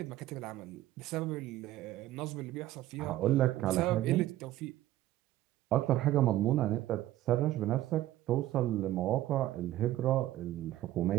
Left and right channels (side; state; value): left; quieter; 14.4 dB